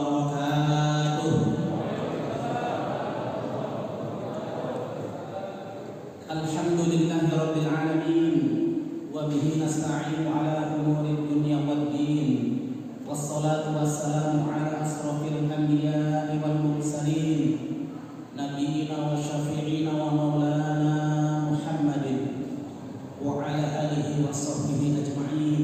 Alhamdulillahirabbil alamin wa bihi nasta'inu ala umuri dunya waddin. Wassalatu wassalamu ala asrofil anbiya'i wal mursalin nabiyyina wa syafi'ina wa maulana Muhammadin wa ala alihi wa sahbihi ajma'in.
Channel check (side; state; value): both; identical; correlation 1.00